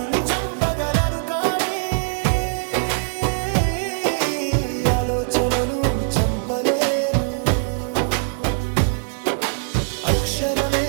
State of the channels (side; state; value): left; silent; 62 dB below the other